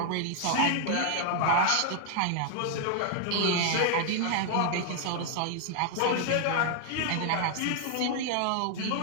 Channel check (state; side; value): different; both; correlation 0.00